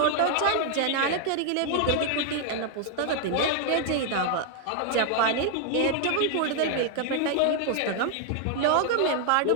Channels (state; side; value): different; both; correlation 0.00